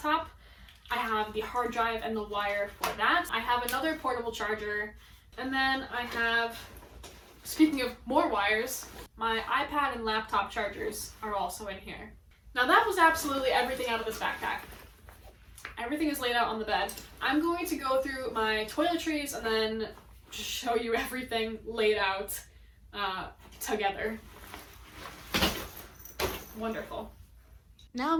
I have the hard drive and the wire for that. I have another portable charger. And then I have, speaking of more wires, my iPad and laptop chargers are also in here. Now that was absolutely everything out of this backpack. Everything is laid out on the bed. I'm going to go through my toiletries and then show you everything laid out together. Wonderful. Now I'm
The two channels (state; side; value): identical; both; correlation 1.00